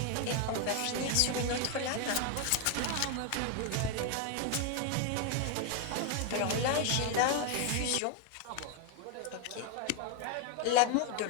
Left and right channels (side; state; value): both; different; correlation 0.00